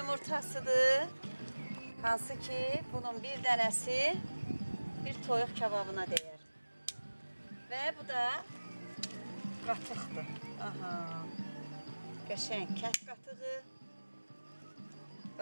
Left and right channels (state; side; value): inverted; both; correlation -1.00